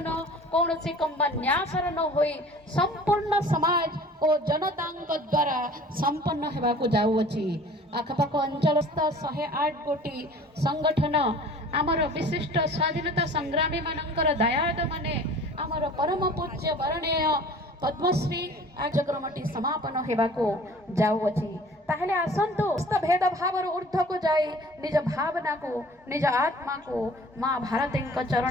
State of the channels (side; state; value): both; normal; correlation 0.46